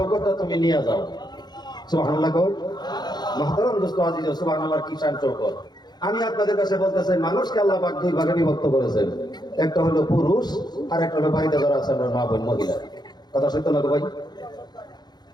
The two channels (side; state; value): right; late; 0.20 ms